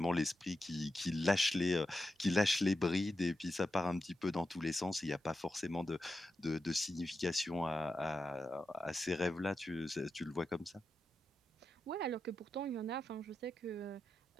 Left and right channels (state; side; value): normal; both; correlation 0.88